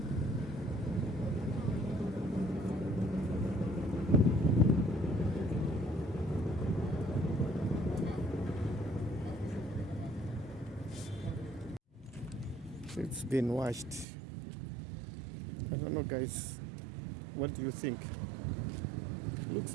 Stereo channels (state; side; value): drops out; left; at 14.1 s